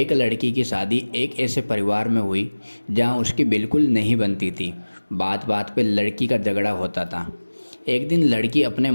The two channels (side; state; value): both; inverted; correlation -1.00